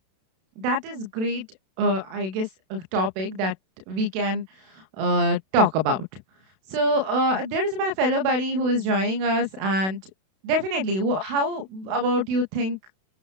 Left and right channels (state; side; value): late; left; 32 ms